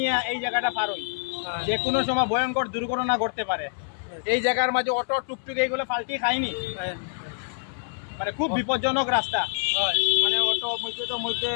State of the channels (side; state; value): right; silent; 61 dB below the other